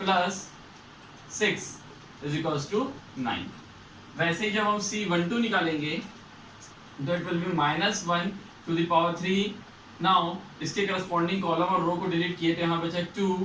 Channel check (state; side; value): identical; both; correlation 1.00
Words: 6 = 9। वैसे ही जब हम C12 निकालेंगे तो it will B -1 to the power 3। Now इसके करस्पॉन्डिंग कॉलम और रो को डिलीट किए तो यहाँ बचा